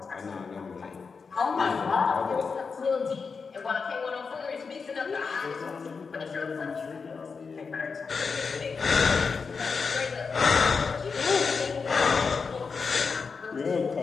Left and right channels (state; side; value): quieter; right; 5.1 dB